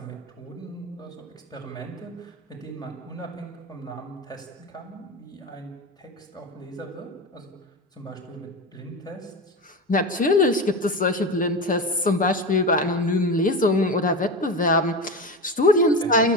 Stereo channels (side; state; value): both; normal; correlation 0.22